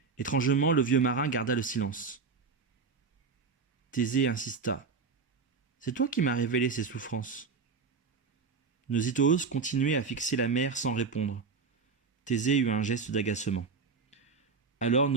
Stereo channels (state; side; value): quieter; left; 4.9 dB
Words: Étrangement, le vieux marin garda le silence. Thésée insista. « C'est toi qui m'as révélé ces souffrances. » Nosithoos continuait à fixer la mer sans répondre. Thésée eut un geste d'agacement. Alors